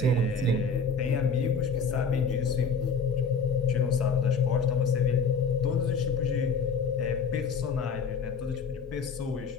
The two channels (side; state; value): right; quieter; 4.9 dB